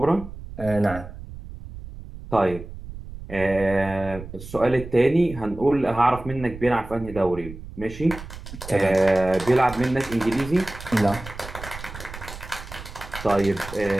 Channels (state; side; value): noise; right; rumble, 13 dB below the sound